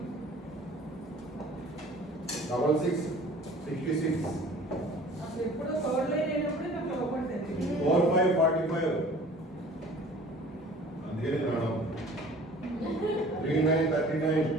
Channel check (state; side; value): normal; both; correlation 0.47